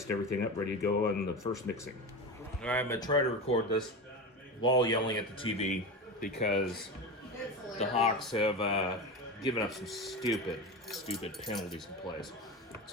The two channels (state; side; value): normal; both; correlation 0.23